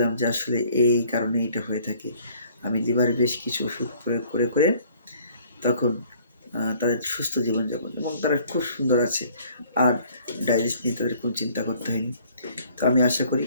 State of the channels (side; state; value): both; inverted; correlation -0.58